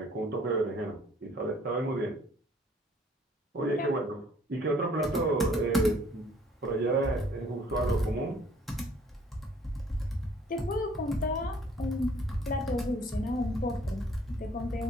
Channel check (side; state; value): both; normal; correlation 0.58